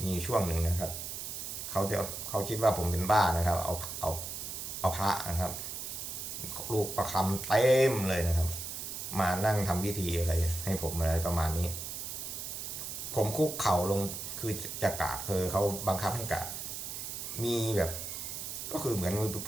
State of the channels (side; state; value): right; noise; hiss, 6 dB below the sound